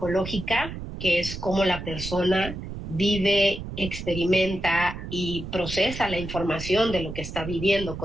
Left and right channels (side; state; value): right; noise; rumble, 9 dB below the sound